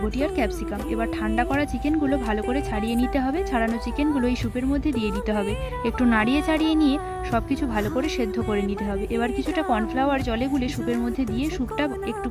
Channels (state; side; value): identical; both; correlation 1.00